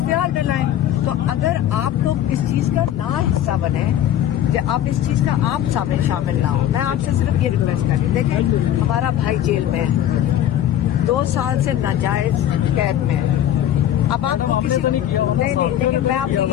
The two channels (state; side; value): quieter; right; 11.4 dB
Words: डलाएं। तो अगर आप लोग इस चीज का ना हिस्सा बने, आप इस चीज का आप शामिल ना हो, मैं आपसे सिर्फ ये रिक्वेस्ट करी। देखिए, हमारा भाई जेल में है, 2 साल से नाजायज कैद में है। अब आपको किसी नहीं, लेकिन मैं